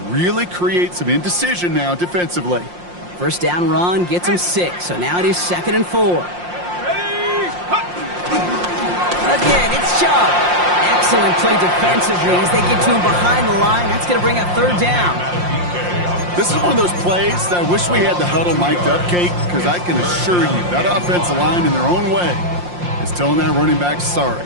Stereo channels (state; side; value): late; left; 5.7 ms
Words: really create some indecision now defensively. First down run gets him 6, so now it is 2nd and 4. Again, it's Chubb. Excellent play defensively as they get to him behind the line. That's going to bring up 3rd down. This is one of those plays that I wish we had the huddle mic'd up, Kate, because I can assure you that offensive line in their own way is telling that running back, sorry,